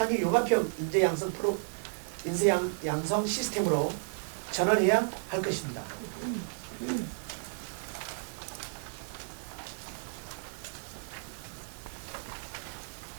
융합형 인재 양성 시스템으로 전환해야 할 것입니다.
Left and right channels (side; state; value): left; silent; 56 dB below the other